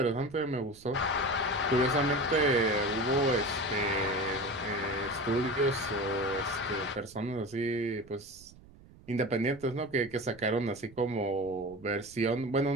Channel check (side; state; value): right; noise; rumble, 23 dB below the sound